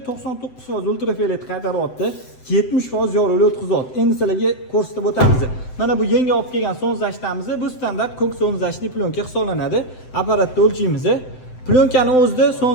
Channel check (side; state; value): right; late; 7.7 ms